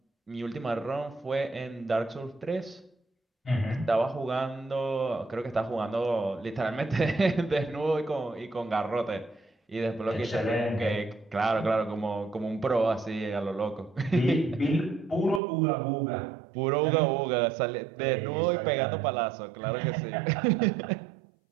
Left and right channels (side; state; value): left; drops out; at 15.4 s